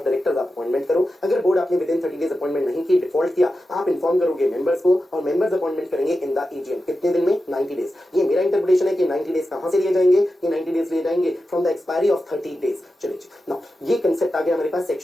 डायरेक्टर्स आप अपॉइंटमेंट करो। अगर बोर्ड आपने विद इन 30 डेज अपॉइंटमेंट नहीं की, डिफॉल्ट किया, आप इन्फॉर्म करोगे मेंबर्स को और मेंबर्स अपॉइंटमेंट करेंगे इन द एजीएम। कितने दिन में, 90 डेज। ये मेरा इंटरप्रिटेशन है कि 90 डेज कहां से लिए जाएंगे, ये 90 डेज लिए जाएंगे from the expiry of 30 days. चलिए नाउ ये कंसेप्ट आ गया हमारे पास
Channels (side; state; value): both; normal; correlation 0.91